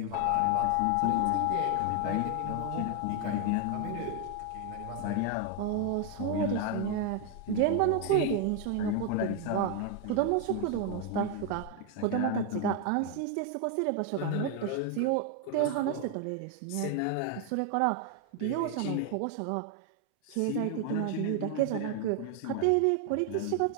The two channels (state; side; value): different; both; correlation 0.01